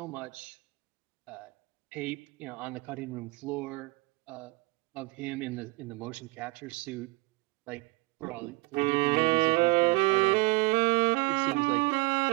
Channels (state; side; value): quieter; left; 23.9 dB